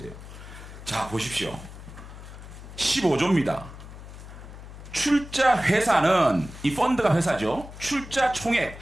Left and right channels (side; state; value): left; noise; hum, 14 dB below the sound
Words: 자, 보십시오. 15조입니다. 출자 회사는, 이 펀드가 회사죠. 출자 총액의